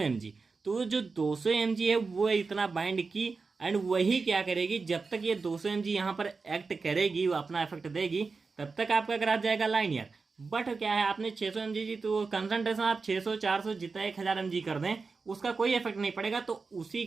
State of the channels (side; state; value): left; quieter; 4.5 dB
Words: mg, तो जो 200 mg है वो इतना बाइंड की, एंड वही क्या करेगी, जब तक ये 200 mg यहाँ पर एक्ट करेगी, वो अपना इफेक्ट देगी, तब तक आपका ग्राफ जाएगा लाइनियर। बट क्या है, आपने 600 mg जी, तो कंसंट्रेशन आप 600 400 जितना 1000 mg कर दें, उसका कोई इफेक्ट नहीं पड़ेगा। तो उसी